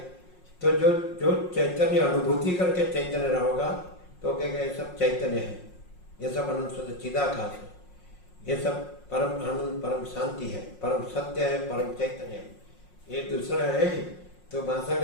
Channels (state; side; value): late; right; 5.5 ms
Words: तो जो जो चैतन्य अनुभूति करके चैतन्य रहोगा तो कहेगा ये सब चैतन्य है, ये सब अनंत शुद्ध चिदाकाश है, ये सब परम आनंद, परम शांति है, परम सत्य है, परम चैतन्य है। ये दूसरा है तो